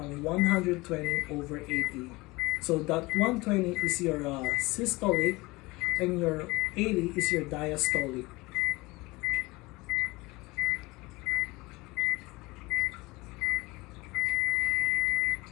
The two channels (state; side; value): quieter; right; 22.4 dB